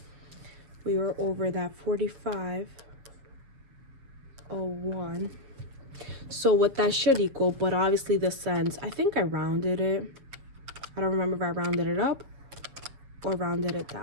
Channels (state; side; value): late; left; 7.5 ms